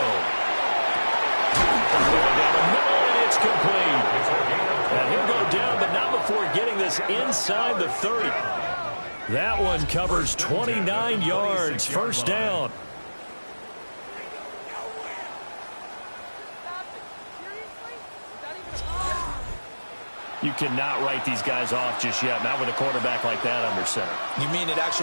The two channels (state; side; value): inverted; both; correlation -1.00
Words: Going down the middle, and it's complete. And he'll go down, but not before getting this inside the 30. That one covers 29 yards, first down. You cannot write these guys off just yet, not with a quarterback like that under center. You mean it